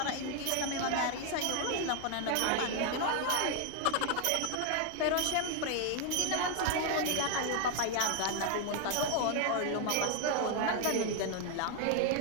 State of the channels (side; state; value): both; different; correlation 0.00